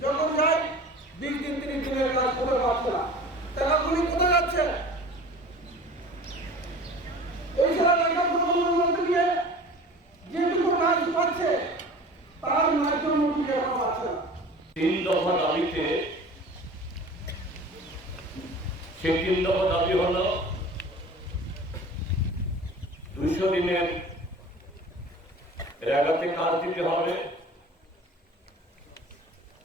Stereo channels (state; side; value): normal; both; correlation 0.41